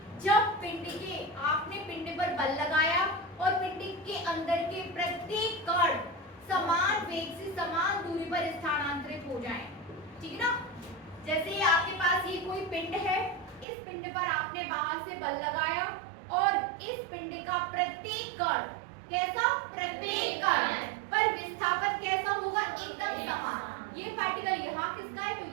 जब पिंड के आपने पिंड पर बल लगाया और पिंड के अंदर के प्रत्येक कण समान वेग से समान दूरी पर स्थानांतरित हो जाएं, ठीक ना। जैसे आपके पास ये कोई पिंड है, इस पिंड पर आपने बाहर से बल लगाया और इस पिंड का प्रत्येक कण कैसा? प्रत्येक कण पर विस्थापन कैसा होगा? एकदम समान। ये पार्टिकल यहाँ किसका है तो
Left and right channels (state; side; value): drops out; left; at 13.7 s